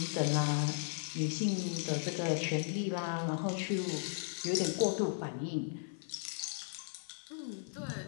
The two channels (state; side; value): silent; right; digital silence